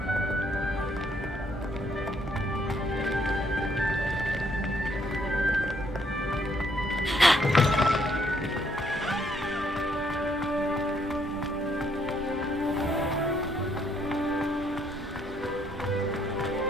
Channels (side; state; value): both; normal; correlation 0.70